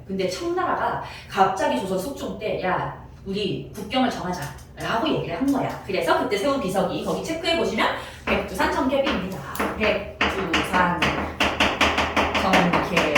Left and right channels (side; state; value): both; identical; correlation 1.00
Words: 근데 청나라가 갑자기 조선 숙종 때 야, 우리 국경을 정하자 라고 얘기를 한 거야. 그래서 그때 세운 비석이 거기 체크해보시면 백두산 정계비입니다. 백두산